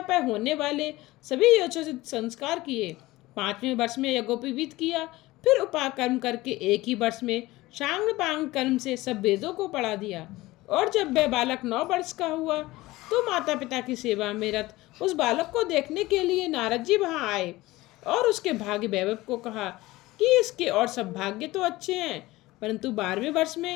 पर होने वाले सभी यथोचित संस्कार किए। 5वें वर्ष में यज्ञोपवीत किया। फिर उपाकर्म करके 1 ही वर्ष में शांग पांग कर्म से सब वेदों को पढ़ा दिया। और जब वह बालक 9 वर्ष का हुआ तो माता पिता की सेवा में रत उस बालक को देखने के लिए नारद जी वहाँ आए और उसके भाग्य वैभव को कहा कि इसके और सब भाग्य तो अच्छे हैं, परंतु 12वें वर्ष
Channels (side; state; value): right; quieter; 19.0 dB